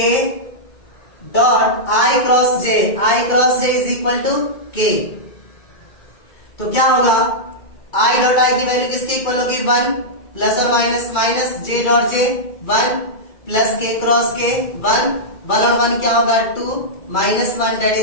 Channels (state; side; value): late; right; 2.3 ms